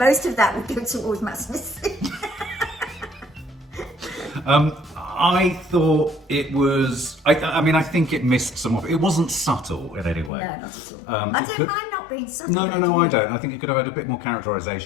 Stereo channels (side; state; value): right; drops out; at 10.3 s